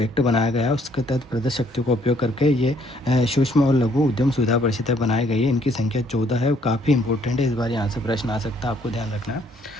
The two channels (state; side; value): normal; both; correlation 0.65